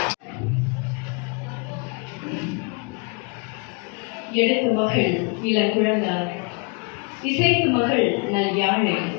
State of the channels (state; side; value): quieter; right; 33.5 dB